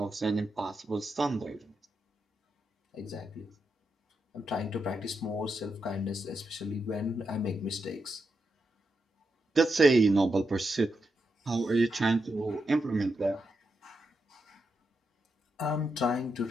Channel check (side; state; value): both; normal; correlation 0.85